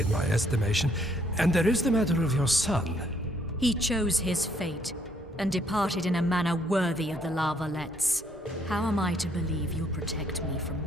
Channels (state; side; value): normal; both; correlation 0.68